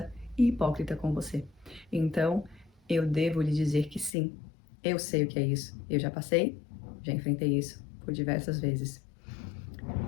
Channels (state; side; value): drops out; right; at 4.1 s